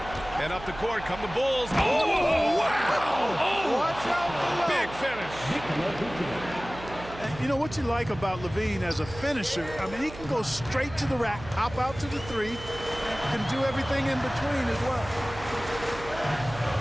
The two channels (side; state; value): right; noise; hum, 14 dB below the sound